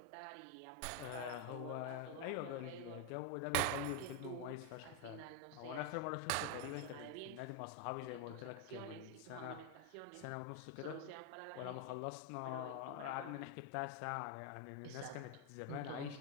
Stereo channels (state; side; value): different; both; correlation 0.01